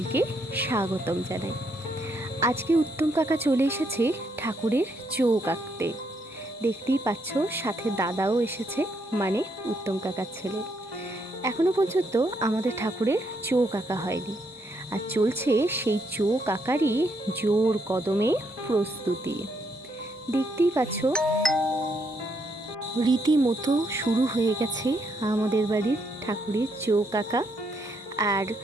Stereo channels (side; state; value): both; normal; correlation 0.75